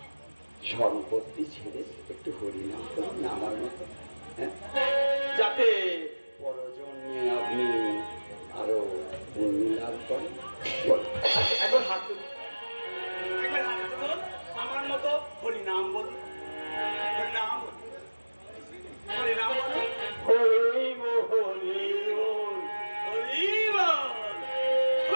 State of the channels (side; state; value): both; inverted; correlation -1.00